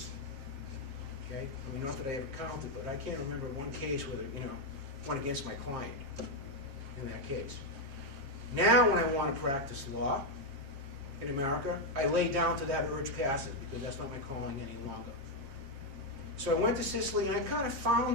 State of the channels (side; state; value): left; late; 7.5 ms